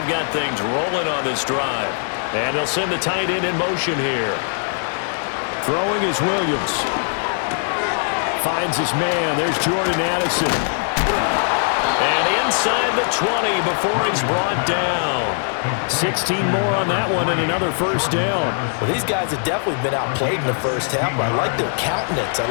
got things rolling on this drive. And they'll send the tight end in motion here. Throwing is Williams. Finds his man. There's Jordan Addison. And inside the 20 before he's brought down. 16 more on that one and another 1st down. Well, these guys have definitely been outplayed in the first half. I like their countenance. I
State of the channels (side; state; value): right; silent; digital silence